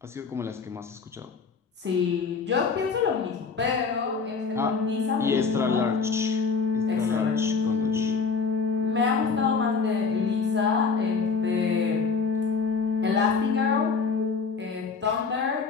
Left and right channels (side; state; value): right; quieter; 5.1 dB